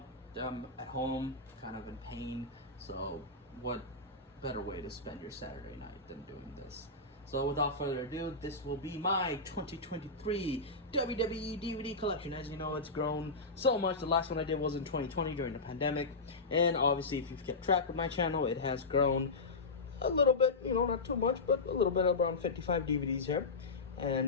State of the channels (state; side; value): quieter; right; 3.5 dB